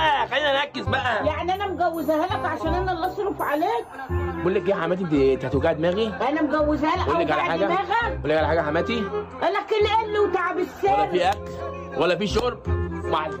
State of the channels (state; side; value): identical; both; correlation 1.00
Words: خلينا نركز بقى. يعني انا مجوزاها لك عشان انا اللي اصرف عليك؟ بقول لك ايه يا حماتي، انت هتوجعي دماغي. انا مجوزاها لك. بقول لك على حاجه، دماغك. بقول لك على حاجه يا حماتي. قال لك القل وتعب السر. ولا في اكل ولا في شرب.